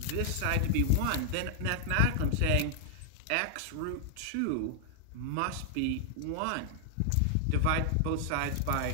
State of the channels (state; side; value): different; both; correlation -0.01